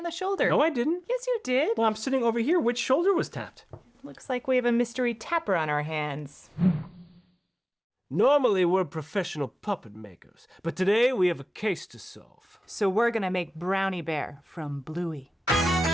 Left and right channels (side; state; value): both; normal; correlation 0.97